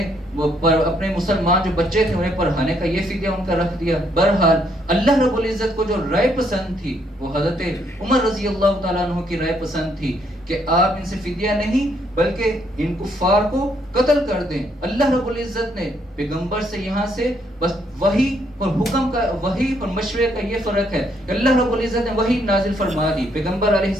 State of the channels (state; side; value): normal; both; correlation 0.71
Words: اپنے مسلمان جو بچے تھے انہیں پڑھانے کا یہ فدیہ ان کا رکھ دیا. بہرحال اللہ رب العزت کو جو رائے پسند تھی وہ حضرت عمر رضی اللہ تعالیٰ عنہ کی رائے پسند تھی کہ آپ ان سے فدیہ نہیں بلکہ ان کفار کو قتل کر دیں. اللہ رب العزت نے پیغمبر سے یہاں سے بس وحی اور حکم کا, وحی اور مشورے کا یہ فرق ہے کہ اللہ رب العزت نے وحی نازل فرما دی پیغمبر علیہ